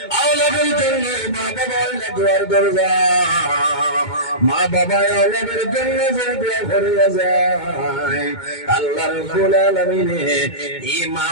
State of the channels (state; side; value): late; right; 2.2 ms